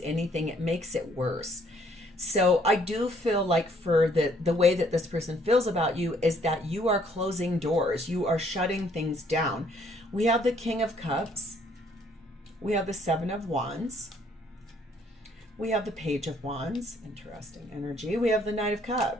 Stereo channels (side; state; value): both; normal; correlation 0.64